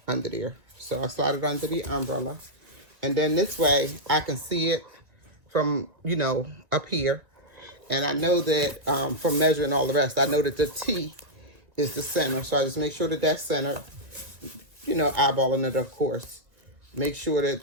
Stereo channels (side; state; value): left; late; 1.6 ms